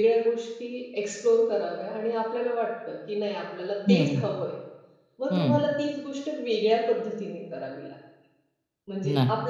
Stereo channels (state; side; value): identical; both; correlation 1.00